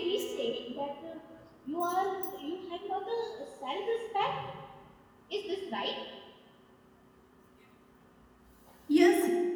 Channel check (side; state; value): both; identical; correlation 1.00